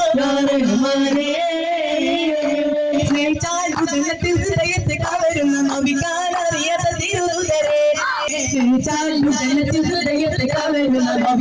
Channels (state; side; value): identical; both; correlation 1.00